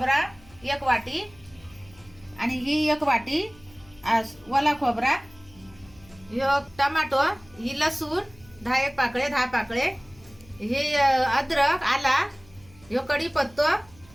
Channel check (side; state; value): left; noise; hum, 26 dB below the sound